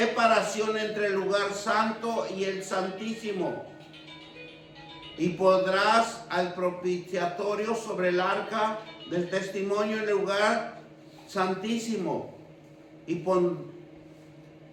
entre el lugar santo y el santísimo. Y pondrás al propiciatorio sobre el arca del testimonio en el lugar santísimo. Y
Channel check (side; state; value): both; identical; correlation 1.00